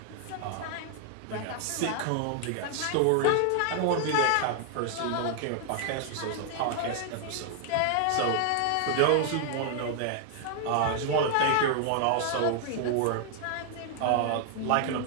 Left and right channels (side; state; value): both; different; correlation 0.00